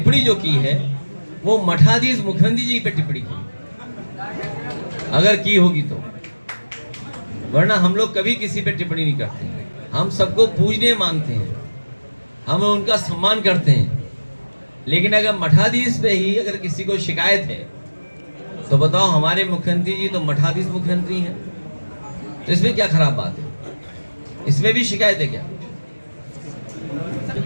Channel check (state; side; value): inverted; both; correlation -1.00